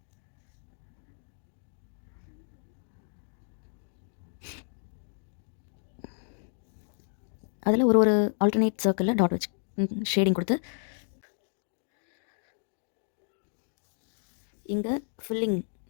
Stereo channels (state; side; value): silent; right; digital silence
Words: அதில் ஒரு ஒரு ஆல்டர்னேட் சர்க்கிளில் டாட் வச்சு ஷேடிங் கொடுத்து இங்கே ஃபில்லிங்,